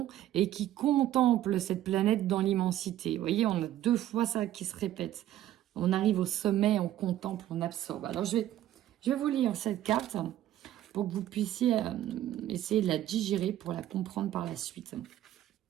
et qui contemple cette planète dans l'immensité. Vous voyez, on a 2 fois ça qui se répète. On arrive au sommet, on contemple, on absorbe. Alors, je vais vous lire cette carte pour que vous puissiez essayer de la digérer pour la comprendre par la suite.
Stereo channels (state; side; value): quieter; left; 12.8 dB